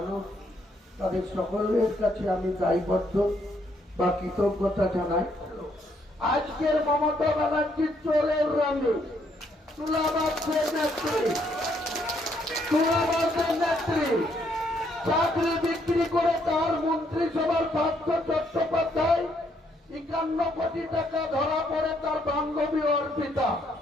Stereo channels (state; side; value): normal; both; correlation 0.71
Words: তাদের সকলের কাছে আমি দায়বদ্ধ বা কৃতজ্ঞতা জানাই। আজকের মমতা ব্যানার্জির চোরের রঙে তুলাবাসের নেত্রী চাকরি বিক্রি করে তার মন্ত্রিসভার পার্থ চট্টোপাধ্যায় 51 কোটি টাকা ধরা পড়ে তার বান্ধবী অর্পিতা